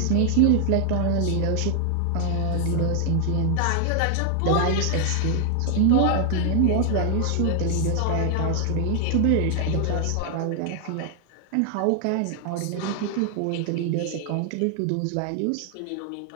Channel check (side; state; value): both; different; correlation 0.01